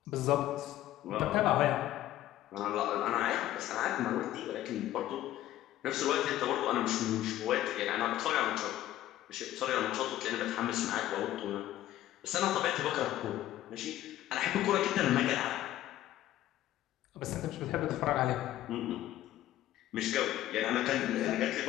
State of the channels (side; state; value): right; quieter; 13.8 dB